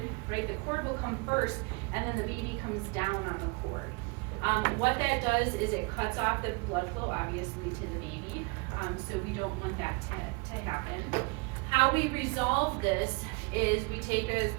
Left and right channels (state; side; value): quieter; left; 30.0 dB